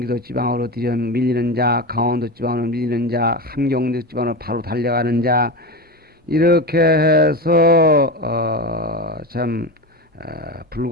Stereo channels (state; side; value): normal; both; correlation 0.21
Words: 지방으로 들여 밀리는 자, 강원도 지방으로 밀리는 자, 함경도 지방으로 바로 달려가는 자, 이렇게 해서